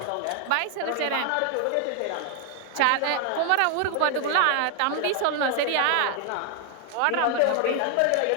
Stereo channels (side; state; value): both; different; correlation 0.00